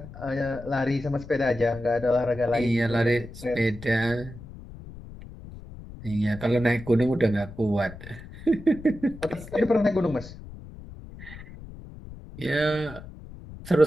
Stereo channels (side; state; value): left; noise; rumble, 15 dB below the sound